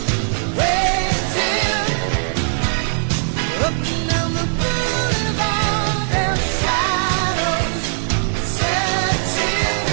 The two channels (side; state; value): left; silent; 62 dB below the other